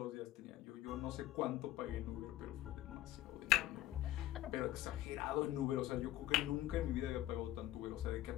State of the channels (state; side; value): quieter; right; 14.7 dB